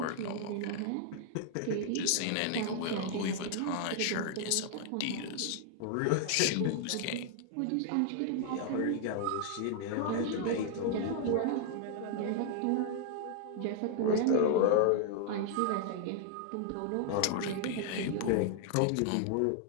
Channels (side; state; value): both; different; correlation 0.00